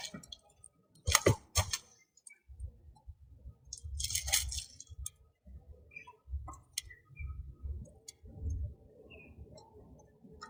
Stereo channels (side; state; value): both; identical; correlation 1.00